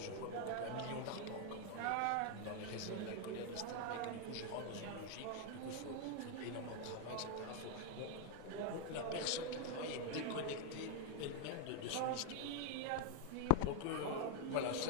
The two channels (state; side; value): different; both; correlation 0.00